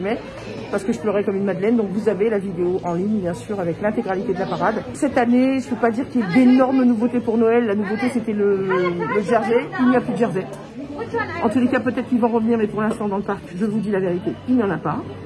parce que je pleurais comme une madeleine. Donc vous avez la vidéo en ligne bien sûr avec l'intégralité de la parade. Cette année, je ne peux pas dire qu'il y ait d'énormes nouveautés pour Noël. La nouveauté c'était le jersey. Il n'y a plus de jersey. En tous les cas peut-être qu'ils vont revenir, mais pour l'instant dans le parc, je vous dis la vérité, il n'y en a pas.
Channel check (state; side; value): identical; both; correlation 1.00